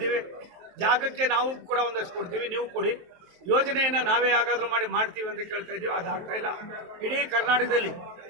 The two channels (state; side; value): late; left; 23 ms